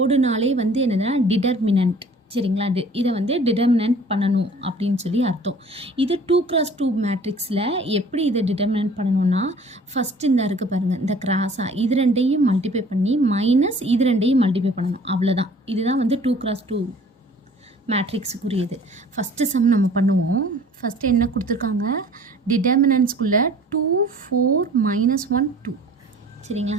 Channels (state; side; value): normal; both; correlation 0.50